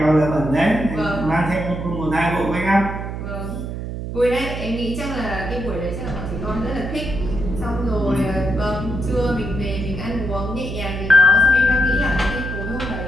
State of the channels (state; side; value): noise; right; hum, 6 dB below the sound